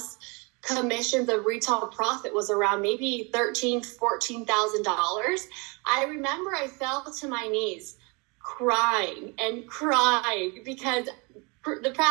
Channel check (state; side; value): quieter; left; 29.7 dB